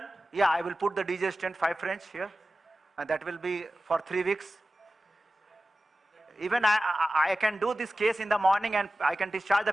Yeah, I will put the DJ stent 5 French here, and that will be for 3 weeks. Even I can do this case in the morning and I can discharge the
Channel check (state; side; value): normal; both; correlation 0.96